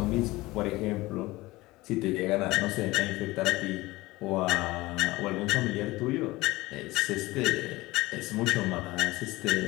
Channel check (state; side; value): quieter; right; 19.9 dB